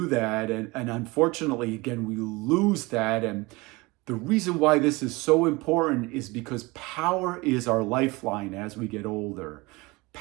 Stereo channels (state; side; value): quieter; left; 23.6 dB